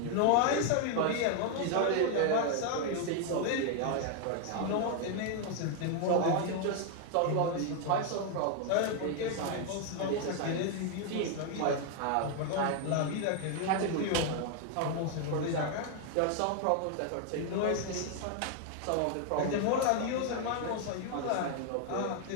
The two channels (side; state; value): both; different; correlation 0.00